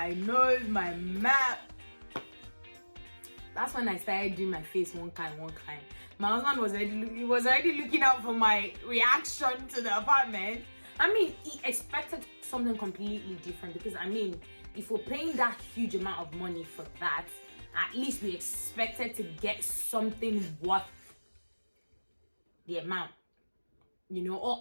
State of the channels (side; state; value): both; inverted; correlation -1.00